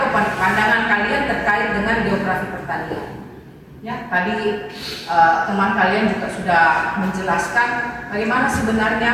pandangan kalian terkait dengan geografi pertanian. Ya, tadi teman kalian juga sudah menjelaskan bagaimana sebenarnya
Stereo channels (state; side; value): identical; both; correlation 1.00